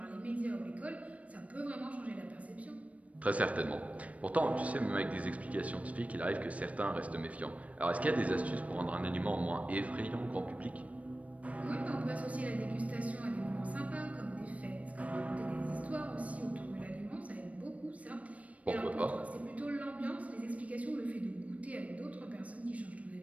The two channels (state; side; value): late; left; 0.067 ms